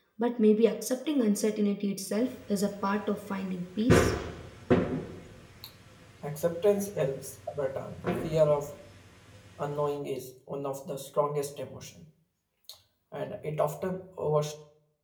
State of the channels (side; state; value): both; identical; correlation 1.00